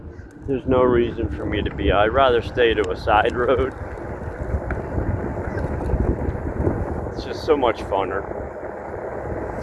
there's no reason for me to be. I'd rather stay to a side road. It's just so much funner.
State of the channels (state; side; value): identical; both; correlation 1.00